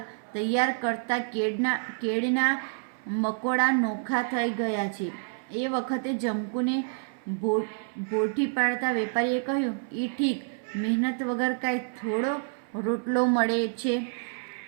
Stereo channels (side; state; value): left; silent; 57 dB below the other